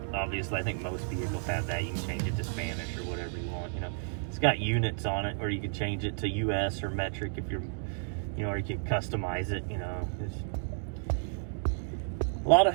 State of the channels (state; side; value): silent; left; digital silence